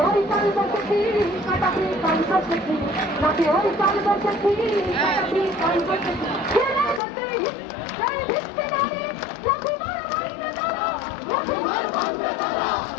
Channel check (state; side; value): drops out; right; at 7.0 s